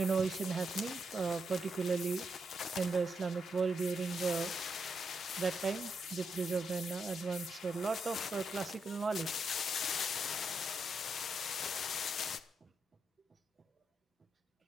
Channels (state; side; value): normal; both; correlation 0.82